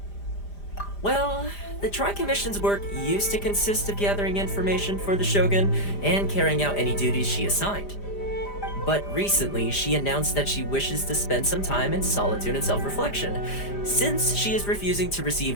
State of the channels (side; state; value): right; late; 5.0 ms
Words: Well, the Tri-Commission's work used to consist of gathering information for the Shogun and carrying out any duties she assigned. But recently, she announced that she wishes to spend some time in solitude and self-reflection. Since she is refusing to receive